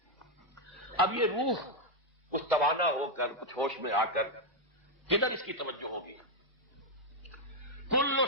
اب یہ روح کچھ توانا ہو کر، کچھ ہوش میں آ کر کدھر اس کی توجہ ہوگی؟ کل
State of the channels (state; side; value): normal; both; correlation 0.00